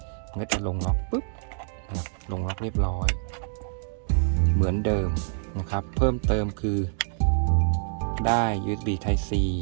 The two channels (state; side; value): silent; left; digital silence